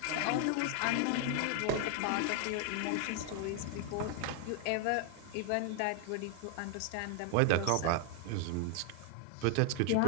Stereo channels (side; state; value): both; different; correlation 0.00